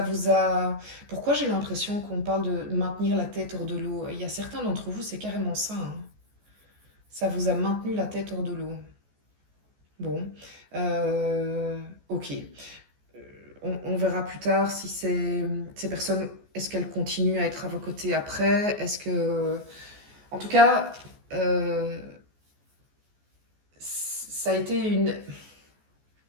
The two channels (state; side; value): late; left; 14 ms